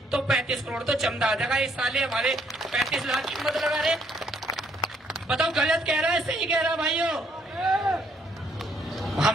तो 35 करोड़ तो चंदा आ जाएगा। इस साल हमारे 35 लाख की मत लगा रहे। बताओ गलत कह रहा है सही कह रहा भाइयों?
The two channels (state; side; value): normal; both; correlation 0.69